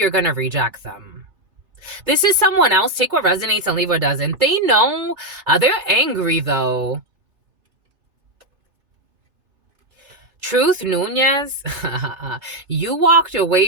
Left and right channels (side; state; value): left; late; 3.3 ms